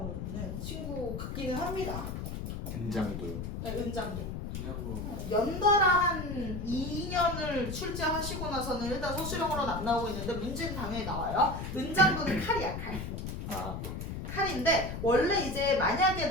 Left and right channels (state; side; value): noise; left; rumble, 6 dB below the sound